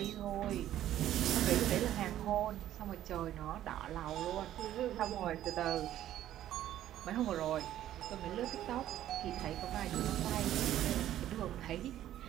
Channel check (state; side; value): quieter; left; 12.5 dB